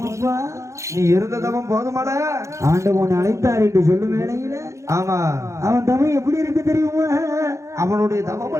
நீ இருந்ததவன் போதுமாடா. ஆண்டவன் அழைத்தார் என்று சொல்லும் வேளையில ஆமா அவன் தவம் எப்படி இருக்கு தெரியுமா? அவனுடைய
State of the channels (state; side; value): late; left; 0.14 ms